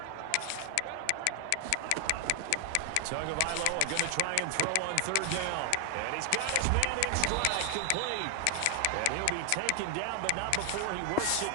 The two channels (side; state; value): both; different; correlation 0.00